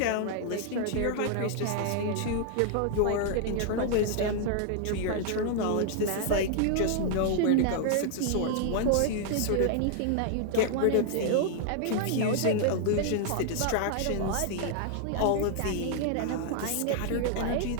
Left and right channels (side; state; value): both; different; correlation 0.00